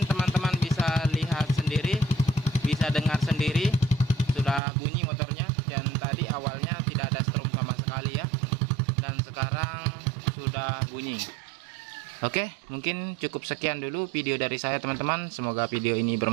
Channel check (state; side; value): drops out; left; at 4.6 s